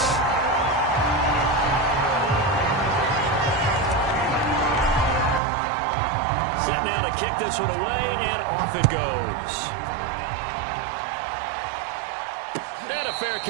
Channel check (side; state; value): left; drops out; at 5.4 s